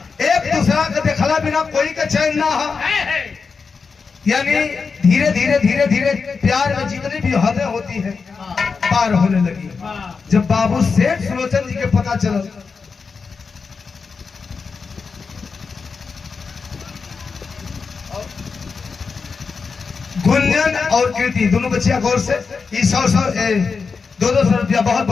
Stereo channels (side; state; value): right; quieter; 5.1 dB